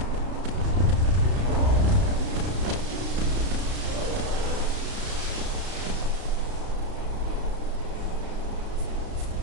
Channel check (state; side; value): late; left; 32 ms